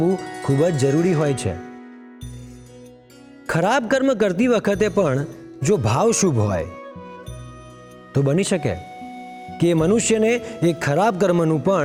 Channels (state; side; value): identical; both; correlation 1.00